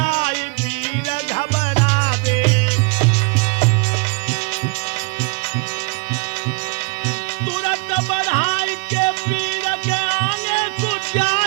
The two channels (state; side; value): quieter; left; 31.0 dB